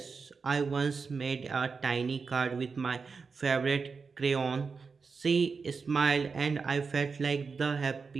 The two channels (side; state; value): left; quieter; 5.0 dB